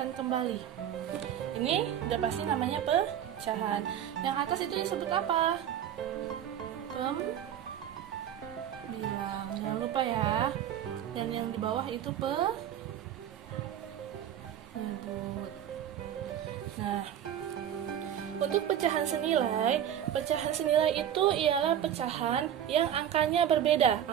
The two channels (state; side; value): quieter; left; 10.1 dB